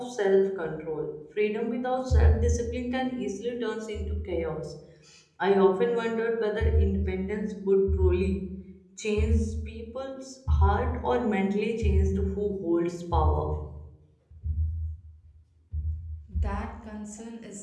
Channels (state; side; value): identical; both; correlation 1.00